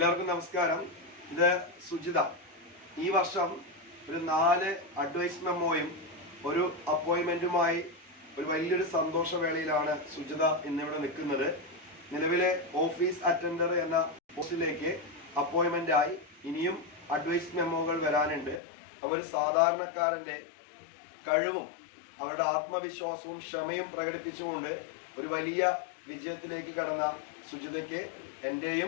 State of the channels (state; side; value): drops out; right; at 18.6 s